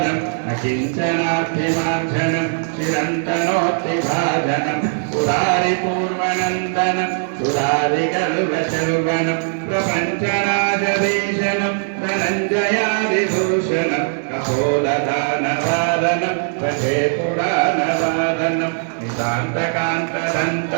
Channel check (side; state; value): left; silent; 61 dB below the other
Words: न किञ्चनार्थिमार्जनं चिरन्तनोऽस्ति भाजनं पुरारिपूर्वनन्दनं सुरारिकल्पशर्वनं प्रपञ्चनाशभीषणं धनञ्जयादिभूषणं कपोलदानवादनं भजे पुराणवादनं